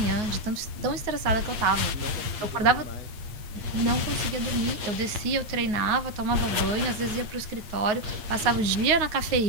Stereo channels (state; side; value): late; left; 8.6 ms